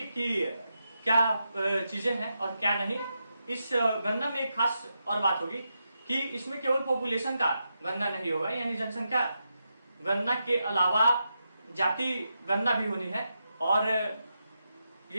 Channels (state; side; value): inverted; both; correlation -0.86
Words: कि क्या चीजें हैं और क्या नहीं। इस गणना में एक खास और बात होगी कि इसमें केवल पॉपुलेशन का गणना नहीं होगा, यानी जनसंख्या गणना के अलावा जाति गणना भी होनी है। और